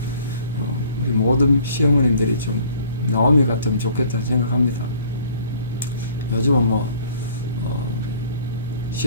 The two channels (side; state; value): both; inverted; correlation -0.55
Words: 우리 모든 시어머님들이 좀 나오미 같으면 좋겠다는 생각합니다. 요즘은